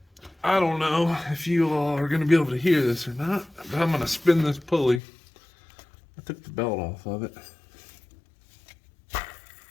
I don't know if you all are going to be able to hear this or not, but I'm going to spin this pulley. I took the belt off of it.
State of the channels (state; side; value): drops out; right; at 5.0 s